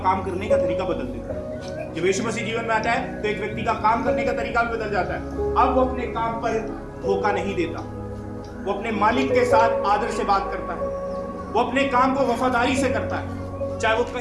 काम करने का तरीका बदल देता है। जब यीशु मसीह जीवन में आता है तो एक व्यक्ति का काम करने का तरीका भी बदल जाता है। अब वो अपने काम पर धोखा नहीं देता, वो अपने मालिक के साथ आदर से बात करता है, वो अपने काम को वफादारी से करता है, चाहे वो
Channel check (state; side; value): identical; both; correlation 1.00